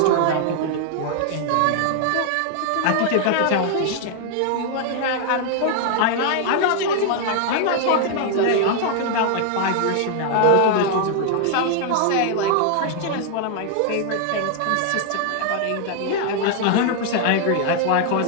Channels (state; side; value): different; both; correlation 0.00